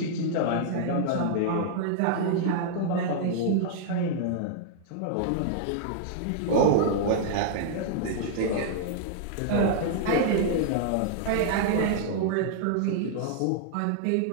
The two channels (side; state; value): both; different; correlation -0.01